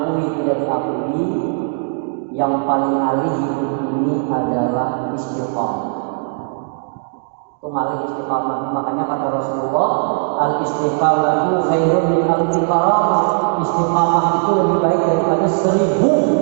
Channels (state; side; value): silent; left; digital silence